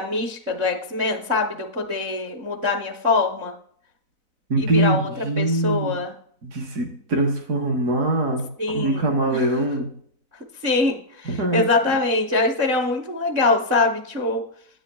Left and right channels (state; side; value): late; left; 4.0 ms